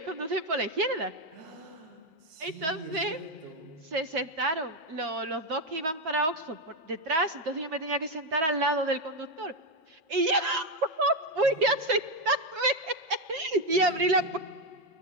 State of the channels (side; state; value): left; late; 6.4 ms